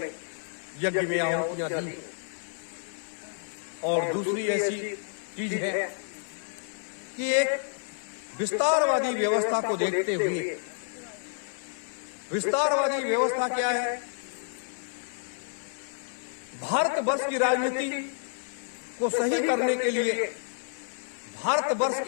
यज्ञ में आहुतियां दी। और दूसरी ऐसी चीज है कि एक विस्तारवादी व्यवस्था को देखते हुए, विस्तारवादी व्यवस्था क्या है? भारतवर्ष की राजनीति को सही करने के लिए, भारतवर्ष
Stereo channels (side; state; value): right; silent; 58 dB below the other